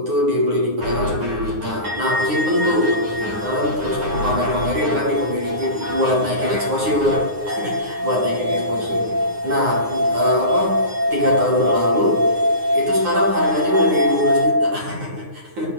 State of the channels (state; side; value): late; left; 9.6 ms